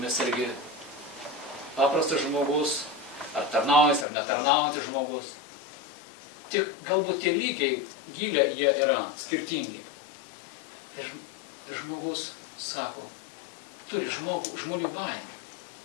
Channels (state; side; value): drops out; right; at 4.0 s